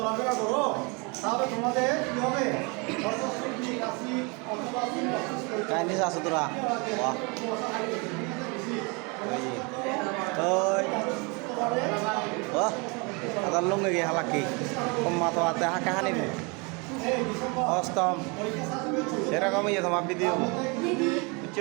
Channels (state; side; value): quieter; left; 30.6 dB